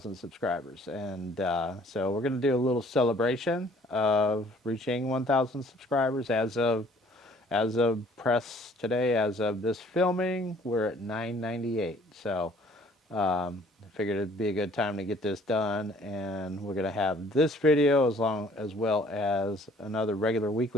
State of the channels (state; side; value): normal; both; correlation 0.57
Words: subscribers, and so we're going to do a little celebration of reaching 1,000 subscribers as of press today, as of this filming, we're at 998. So I figured it'd be a good time to get this done, and we're going to have this video as well as another regular